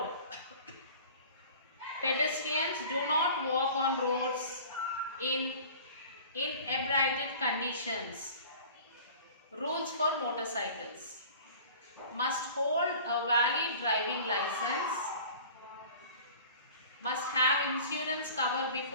Pedestrians do not walk on roads in inebriated conditions. Rules for motorcycles. Must hold a valid driving license. Must have insurance cover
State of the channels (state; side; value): inverted; both; correlation -0.43